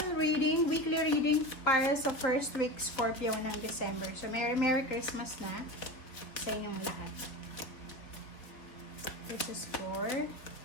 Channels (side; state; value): right; late; 3.5 ms